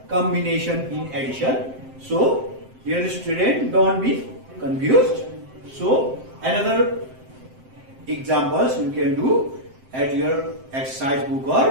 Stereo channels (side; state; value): left; late; 7.7 ms